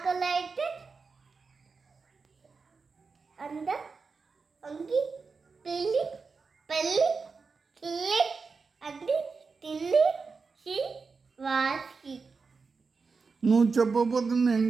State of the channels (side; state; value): left; quieter; 4.7 dB